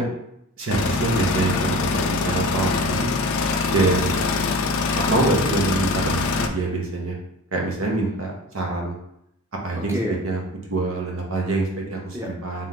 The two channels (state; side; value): normal; both; correlation 0.37